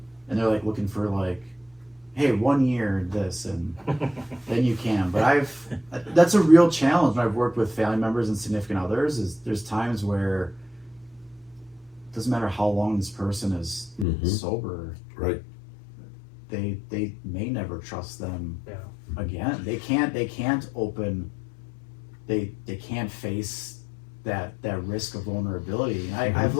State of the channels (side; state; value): right; drops out; at 14.1 s